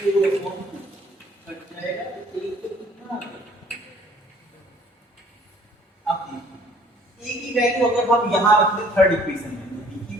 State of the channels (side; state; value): both; normal; correlation 0.56